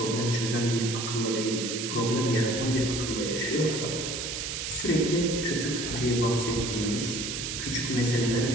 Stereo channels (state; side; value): noise; right; hiss, 4 dB below the sound